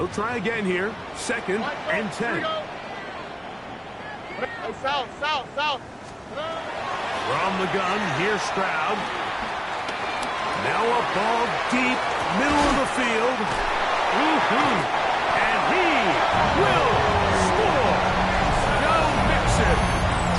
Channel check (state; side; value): identical; both; correlation 1.00